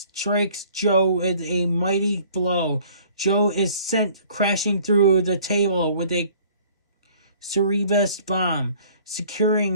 Joe with a mighty blow. Joe is sent crashing through the table with a Cerebus bomb,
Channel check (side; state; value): both; inverted; correlation -0.54